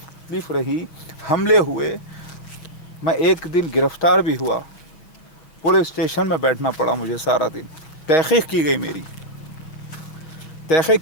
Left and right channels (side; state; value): right; late; 6.4 ms